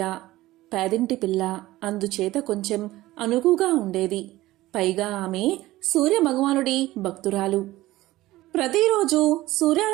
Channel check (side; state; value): left; quieter; 17.2 dB